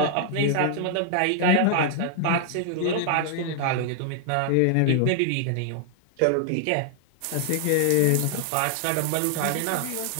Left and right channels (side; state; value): both; different; correlation 0.00